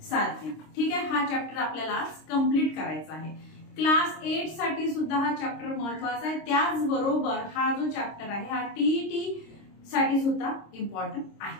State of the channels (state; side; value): late; right; 26 ms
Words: साधने। ठीक आहे, हा चॅप्टर आपल्याला आज कंप्लीट करायचा आहे। क्लास 8 साठी सुद्धा हा चॅप्टर महत्त्वाचा आहे, त्याचबरोबर हा जो चॅप्टर आहे हा टीईटी साठी सुद्धा इम्पॉर्टंट